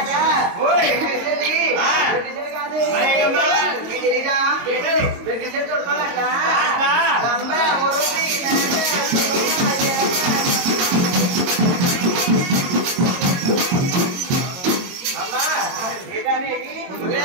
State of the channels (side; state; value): left; late; 22 ms